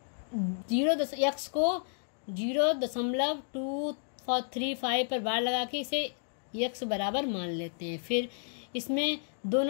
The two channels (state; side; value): silent; right; digital silence